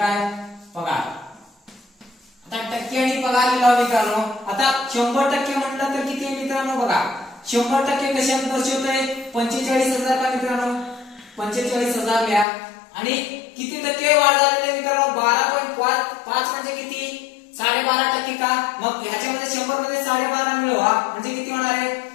पगार. आता टक्के आणि पगार लिहिला मित्रांनो. आता 100% म्हटलं तर किती आहे मित्रांनो? बघा 100% कशात दर्शवतोय? 45,000 का मित्रांनो? 45,000 लिहा. आणि किती टक्के वाढ झालेली मित्रांनो? 12.5 म्हणजे किती? 12.5% का? मग ह्याच्यामध्ये 100 मध्ये 12.5 मिळवा म्हणजे किती होणार आहे?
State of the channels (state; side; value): drops out; right; at 12.5 s